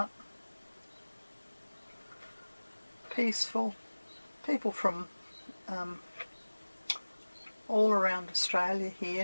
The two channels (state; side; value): inverted; both; correlation -1.00